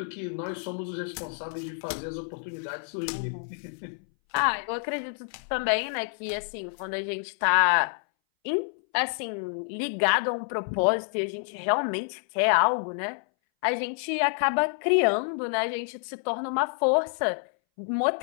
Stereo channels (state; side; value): silent; right; 59 dB below the other